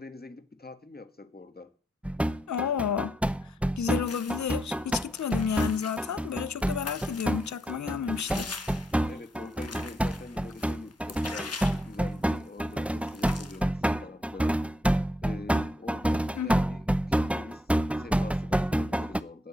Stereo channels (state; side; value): normal; both; correlation 0.80